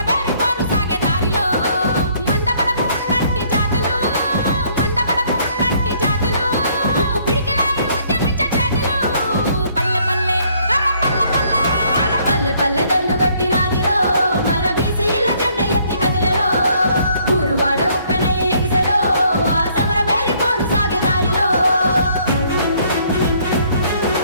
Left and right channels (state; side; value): inverted; both; correlation -0.64